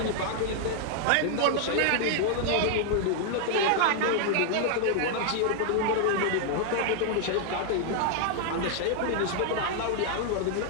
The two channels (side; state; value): both; different; correlation 0.00